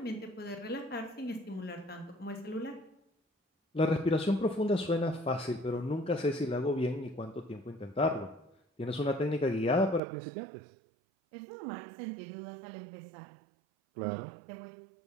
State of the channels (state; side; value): drops out; left; at 10.0 s